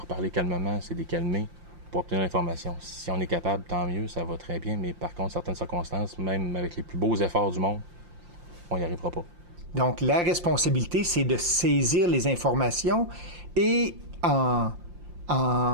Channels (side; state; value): left; late; 5.7 ms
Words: parler calmement, c'est de les calmer pour obtenir l'information. Si on est capable, tant mieux, ça va très bien, mais par contre, certaines circonstances, même avec les plus beaux efforts du monde, on n'y arrivera pas. Donc, la responsabilité, c'est de saisir les informations et en